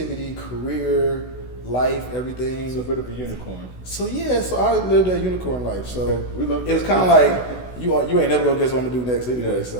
career, life, everything. It's a bit of a unicorn. So I lived that unicorn life. So it was kind of like you ain't never gonna guess what I'm gonna do next anyway.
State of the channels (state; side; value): late; right; 16 ms